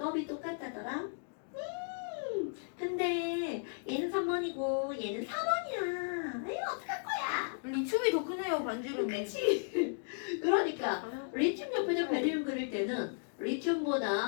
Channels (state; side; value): silent; right; digital silence